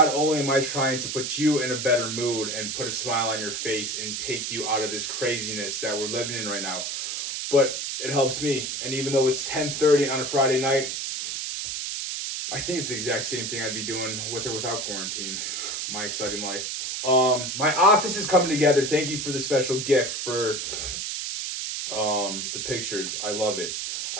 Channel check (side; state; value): right; noise; hiss, 3 dB below the sound